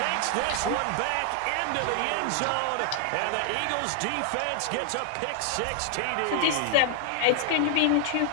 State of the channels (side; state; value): both; different; correlation 0.00